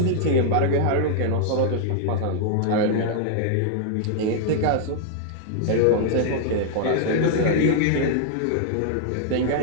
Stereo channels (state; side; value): different; both; correlation -0.01